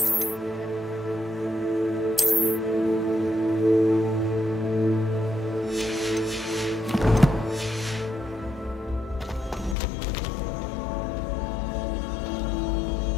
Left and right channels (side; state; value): right; drops out; at 9.8 s